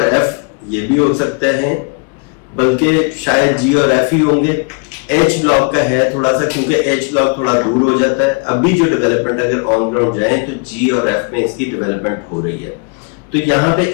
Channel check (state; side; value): quieter; right; 35.0 dB